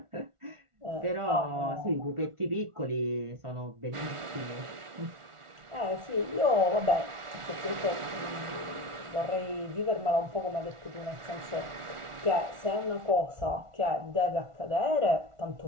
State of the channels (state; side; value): late; left; 1.4 ms